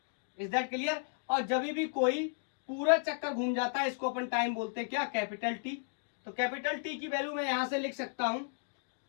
Is that clear? और जब भी कोई पूरा चक्कर घूम जाता है इसको अपन टाइम बोलते हैं, क्या, कैपिटल T। तो कैपिटल T की वैल्यू मैं यहां से लिख सकता हूं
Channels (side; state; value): right; silent; digital silence